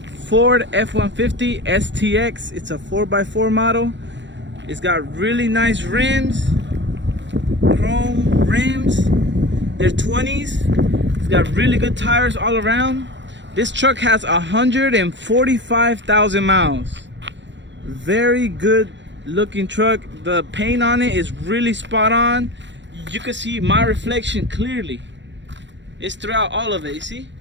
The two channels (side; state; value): left; late; 0.53 ms